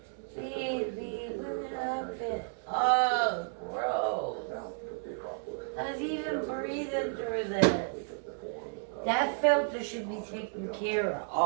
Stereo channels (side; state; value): left; silent; 56 dB below the other